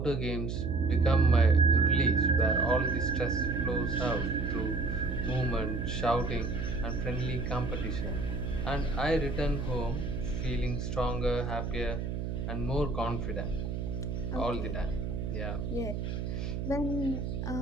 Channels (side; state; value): right; noise; hum, 3 dB below the sound